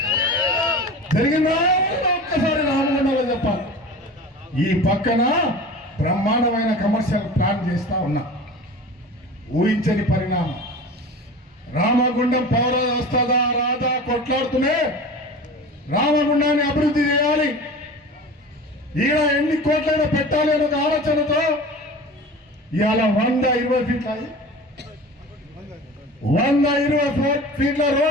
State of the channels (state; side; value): normal; both; correlation 0.35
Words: జరిగిందా ఒక్కసారి రామగుండంలో చెప్పాలి. ఈ పక్కన బ్రహ్మాండమైన కమర్షియల్ ప్లాన్ చేస్తా ఉన్నా. ఊహించని పరిణామం. రామగుండం పౌర వస్తుందా రాదా కొట్లాడుతూనే రామగుండాన్ని అభివృద్ధి చేయాలి, ఈడ ఎన్ని కోట్లైనా పెట్టాలి అని ఒక ఆలోచనతో ఇవాళ 120 ఫీట్ల 120 ఫీట్ల